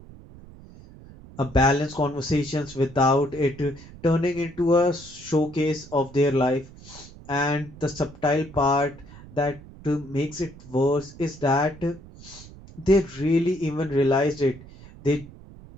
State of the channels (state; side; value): noise; right; rumble, 19 dB below the sound